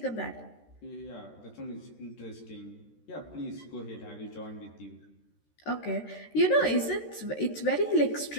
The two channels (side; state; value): right; late; 13 ms